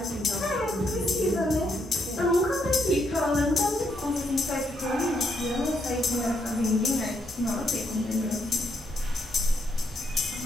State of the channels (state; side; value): normal; both; correlation 0.76